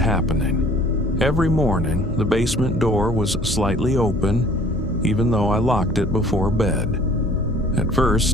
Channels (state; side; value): noise; left; hum, 12 dB below the sound